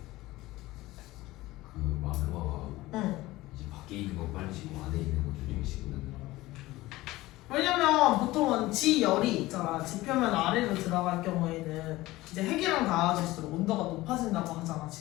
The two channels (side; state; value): right; quieter; 18.3 dB